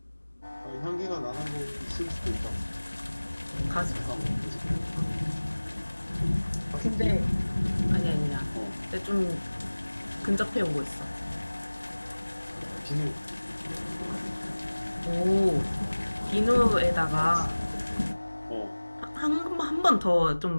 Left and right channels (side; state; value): both; inverted; correlation -1.00